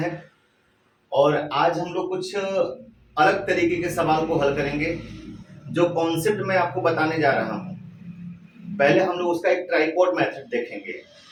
और आज हम लोग कुछ अलग तरीके के सवाल को हल करेंगे। जो कॉन्सेप्ट मैं आपको बताने जा रहा हूं, पहले हम लोग उसका एक ट्राइपॉड मेथड देखेंगे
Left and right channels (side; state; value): both; identical; correlation 1.00